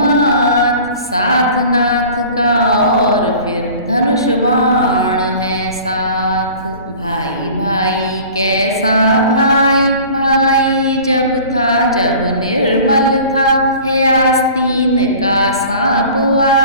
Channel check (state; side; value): inverted; both; correlation -0.44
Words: साथ नाथ का और फिर धनुष बाण है साथ। भाई भाई कैसा भाई, भाई जब था जब निर्मल था। है आस्तीन का सांप